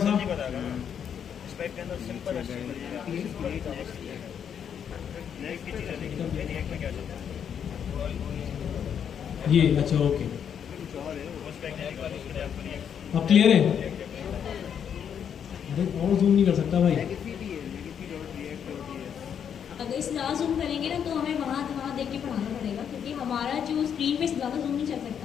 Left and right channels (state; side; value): quieter; right; 8.2 dB